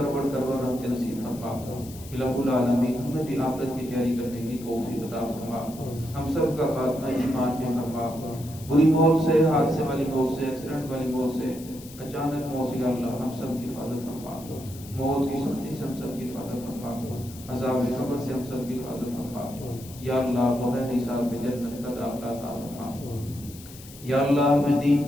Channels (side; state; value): left; noise; hiss, 18 dB below the sound